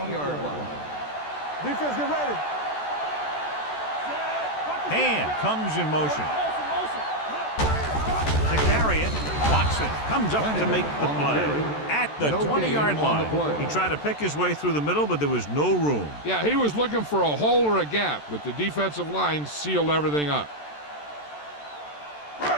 line. Defense, get ready. Hand comes in motion. To carry it, Watson comes up to make the play at the 20-yard line. He tried to pick his way through the middle, but there was no room. Yeah, he was looking for a hole or a gap, but the defensive line sealed everything up.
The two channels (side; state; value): right; late; 14 ms